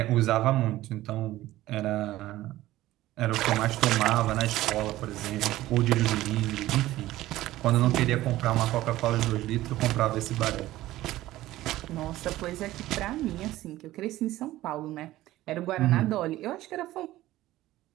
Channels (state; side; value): quieter; left; 15.8 dB